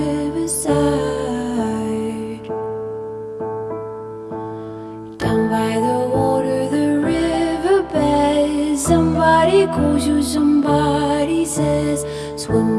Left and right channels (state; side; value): identical; both; correlation 1.00